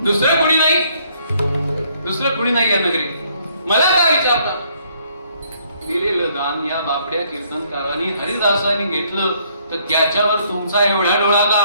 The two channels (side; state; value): both; inverted; correlation -0.66